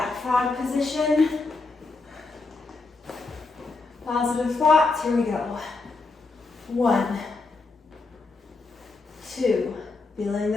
frog position. Positive thoughts. Here we go. 1, 2. Feeling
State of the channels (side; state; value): right; quieter; 3.7 dB